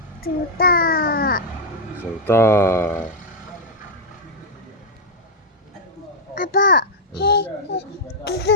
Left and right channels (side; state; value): both; normal; correlation -0.02